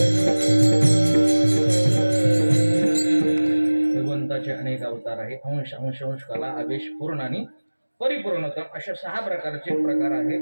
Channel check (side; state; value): both; inverted; correlation -1.00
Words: भगवंताचे अनेक अवतार आहे. अंश अंश अंश कला आवेश पूर्ण आणि परिपूर्णतम अशा 6 प्रकारचे प्रकार